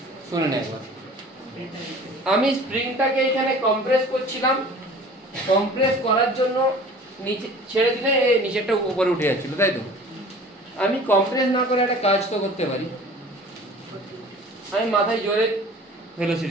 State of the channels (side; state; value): both; normal; correlation 0.45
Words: শুনে নে একবার। আমি স্প্রিংটাকে এখানে কম্প্রেস করছিলাম, কম্প্রেস করার জন্য নিচে ছেড়ে দিলে এই নিচেরটা উপরে উঠে যাচ্ছিল, তাই তো? আমি কম্প্রেস না করে একটা কাজ তো করতে পারি, আমি মাথায় জোরে